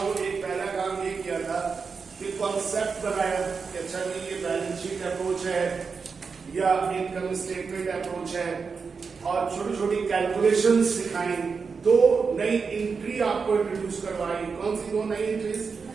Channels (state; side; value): quieter; left; 5.2 dB